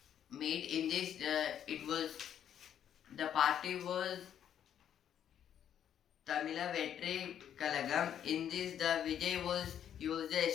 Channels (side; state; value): right; quieter; 9.6 dB